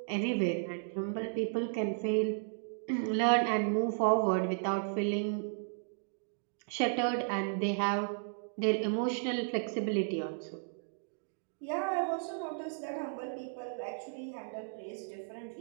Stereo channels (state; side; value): silent; left; digital silence